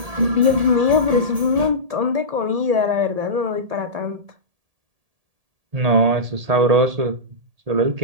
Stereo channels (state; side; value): late; left; 1.8 ms